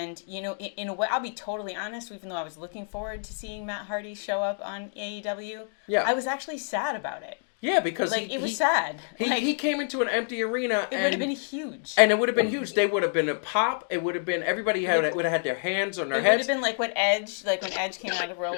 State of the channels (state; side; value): silent; right; digital silence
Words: you know, in a way, I'll be totally honest, even though I was looking forward to seeing Matt Hardy show up on AEW, I was actually sad about it. Yeah, because it was sad. He came into an empty arena. It would have been huge. And it would have been huge. They would have been a pop. It would have been, everybody would have had their hands on their heads. It would have been like when Edge came out of Royal